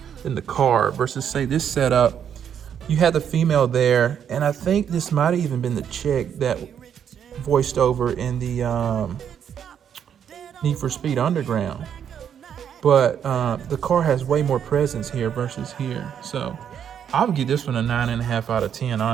in the car versus, say, this setup. You had the female there, and I think this might have even been the chick that voiced over in the Need for Speed Underground. But the car has way more presence here versus here. So I would give this one a 9.5 out of 10,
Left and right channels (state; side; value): quieter; left; 8.6 dB